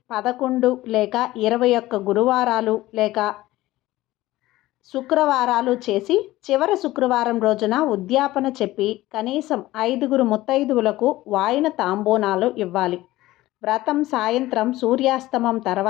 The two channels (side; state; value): right; quieter; 17.0 dB